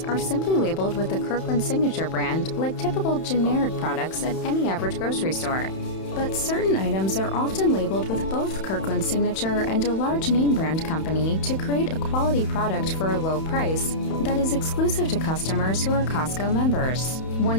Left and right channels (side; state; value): right; late; 31 ms